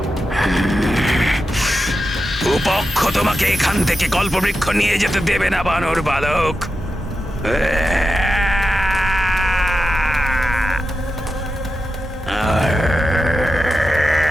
উপক্ষ তোমাকে এখান থেকে কল্পবৃক্ষ নিয়ে যেতে দেবে না বানর বালক।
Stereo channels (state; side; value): normal; both; correlation 0.89